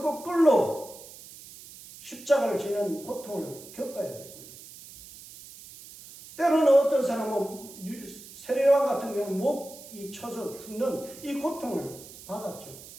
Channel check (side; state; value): right; noise; hiss, 17 dB below the sound